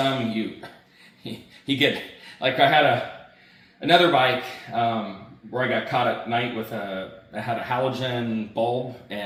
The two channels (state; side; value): identical; both; correlation 1.00